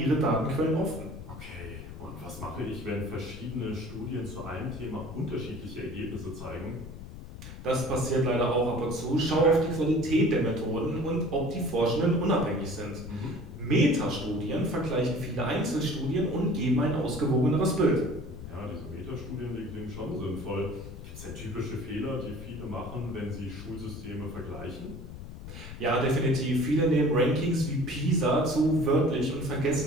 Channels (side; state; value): left; noise; rumble, 12 dB below the sound